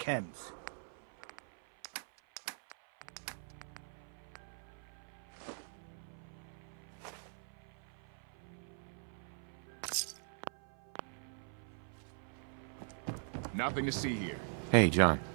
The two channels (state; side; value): silent; left; 50 dB below the other